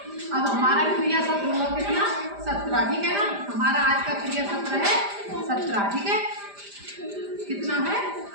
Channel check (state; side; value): late; left; 5.0 ms